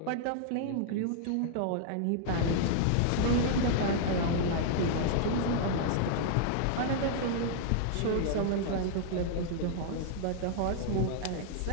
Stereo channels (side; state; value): both; different; correlation -0.01